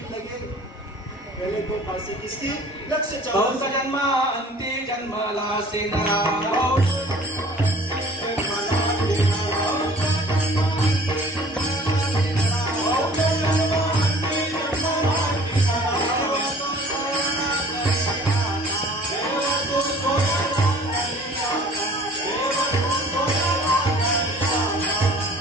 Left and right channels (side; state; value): both; normal; correlation 0.49